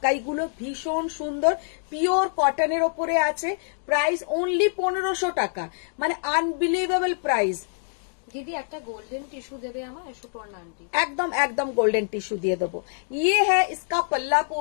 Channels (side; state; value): right; silent; digital silence